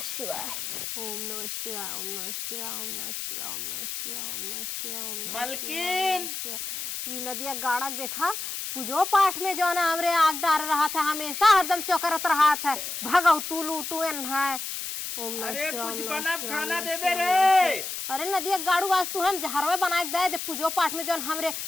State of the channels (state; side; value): noise; left; hiss, 5 dB below the sound